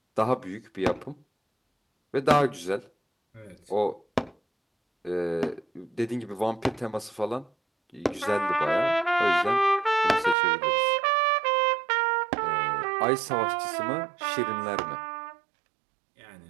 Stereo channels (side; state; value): left; drops out; at 10.4 s